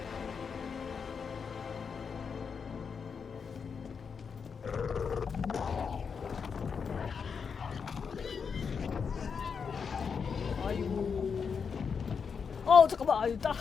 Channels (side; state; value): right; quieter; 6.1 dB